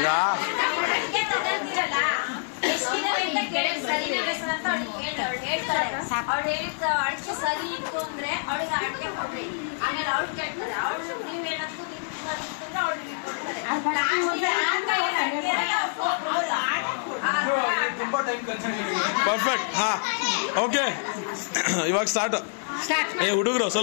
ಅಡಿಕೆ ಸರಿ ಇತ್ತು ಅಂದ್ರೆ ಅವಳಿಗೆ ಅಡಿಕೆ ಕೊಡ್ರಿ, ಆಮೇಲೆ ಅವ್ಳು ಕೇಳ್ತಾರೆ, ಅವಳು ನೀವೇನಾದ್ರು ಅವ್ಳಿಗೆ ಕೊಡ್ತಾರೆ. ಪರ್ಫೆಕ್ಟ್. ಹಾ ಓಕೆ, ಇವಾಗ ಸ್ಟಾರ್ಟ್. ಹುಡುಗರು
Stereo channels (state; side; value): silent; right; digital silence